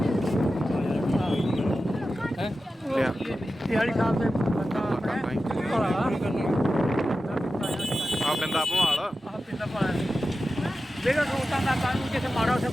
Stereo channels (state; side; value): normal; both; correlation 0.93